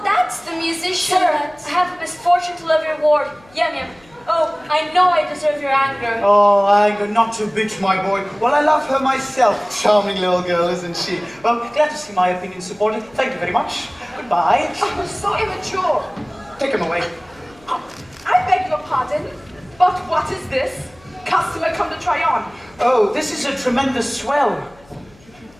that's the musician. Sir, I have the misfortune to love your ward. Yum yum. Oh, I know I deserve your anger. Oh, anger, not to bitch, my boy. Well, I love her myself. Charming little girl, isn't she? Well, glad to see my opinion supported. Thank you very much. Goodbye. Oh, so immature. Take him away. I beg your pardon, but what is this? Customer come to try on. Oh, this is a tremendous swell.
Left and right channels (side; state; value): left; noise; hum, 28 dB below the sound